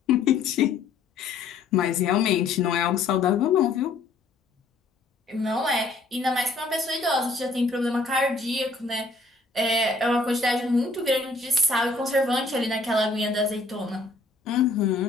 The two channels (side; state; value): right; quieter; 3.7 dB